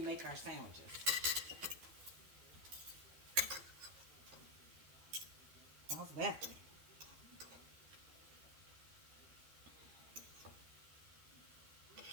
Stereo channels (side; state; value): left; late; 12 ms